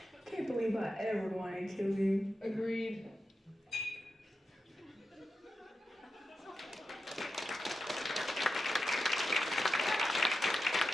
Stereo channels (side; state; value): both; normal; correlation 0.90